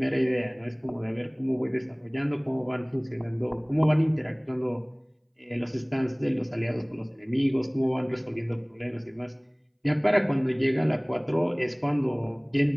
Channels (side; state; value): both; identical; correlation 1.00